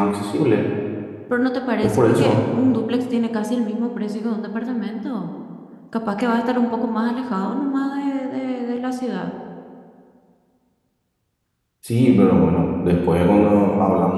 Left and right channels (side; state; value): both; identical; correlation 1.00